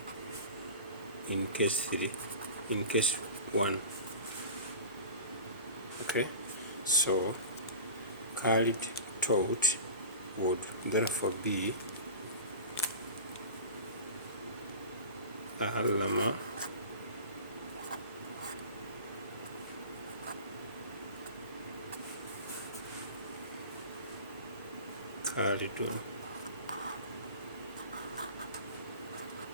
in case 1. Okay, so Khalid taught would therefore be Allama Khalidun.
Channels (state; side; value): inverted; both; correlation -0.34